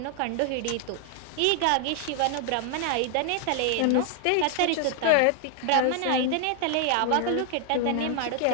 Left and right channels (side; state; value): both; different; correlation 0.00